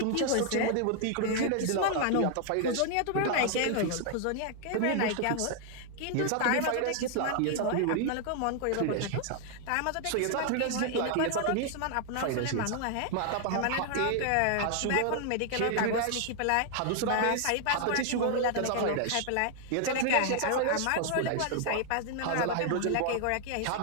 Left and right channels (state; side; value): different; both; correlation 0.00